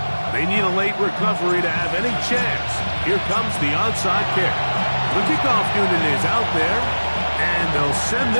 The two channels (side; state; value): both; inverted; correlation -1.00